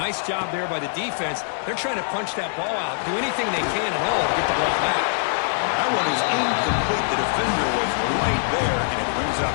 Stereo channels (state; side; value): silent; right; digital silence